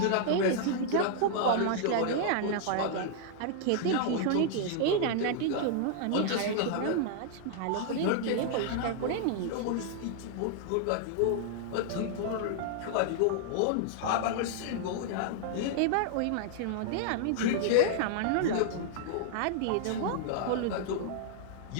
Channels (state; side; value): different; both; correlation -0.01